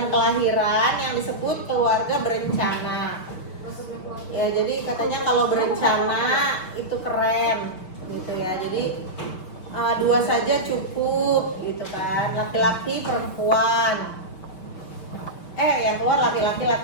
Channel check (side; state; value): right; late; 5.7 ms